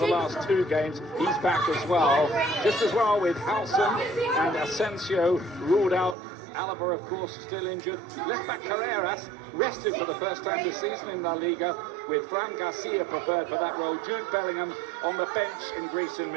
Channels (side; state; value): left; drops out; at 6.2 s